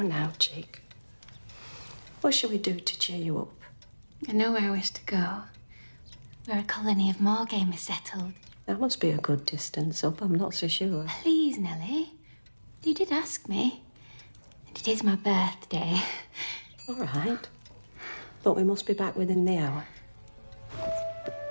chick. What shall we do to cheer you up? I know where I wish to go. Where a colony of moorgame is settled. That must be a good distance up, I'm not so sure. Please, Nellie. You did ask me. And it is my birthday. All right. But we must be back within the hour.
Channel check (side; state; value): both; inverted; correlation -1.00